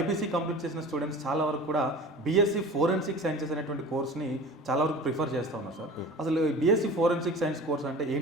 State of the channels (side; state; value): both; normal; correlation 0.38